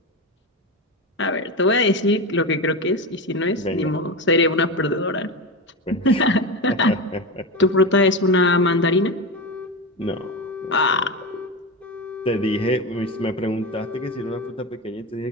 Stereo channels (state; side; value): normal; both; correlation 0.19